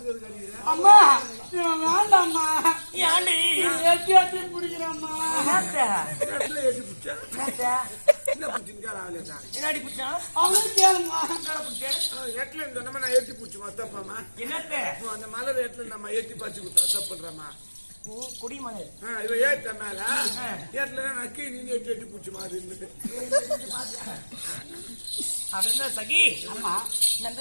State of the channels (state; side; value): inverted; both; correlation -1.00